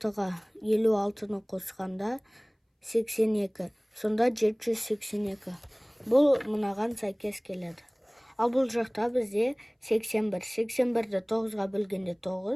56-ны қосқанда 82. Сонда 782. Бұл мұнаған сәйкес келеді. Ал бұл жақта бізде 81. 81-ді 9-ға бөлгенде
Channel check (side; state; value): both; identical; correlation 1.00